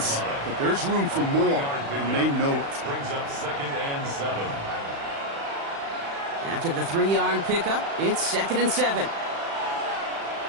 but there's room for more, and they know it. Brings up 2nd and 7. After the 3-yard pickup, it's 2nd and 7.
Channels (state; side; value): late; left; 36 ms